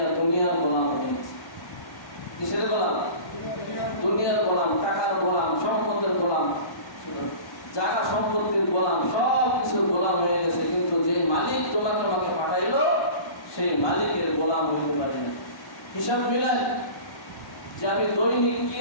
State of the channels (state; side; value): late; right; 1.1 ms